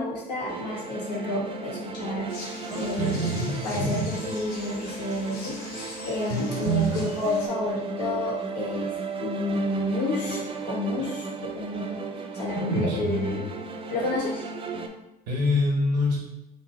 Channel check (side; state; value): both; normal; correlation 0.45